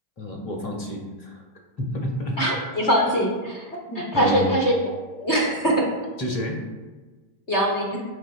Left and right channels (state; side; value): late; right; 3.2 ms